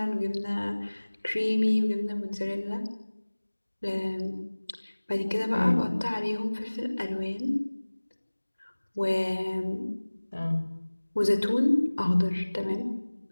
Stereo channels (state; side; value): inverted; both; correlation -1.00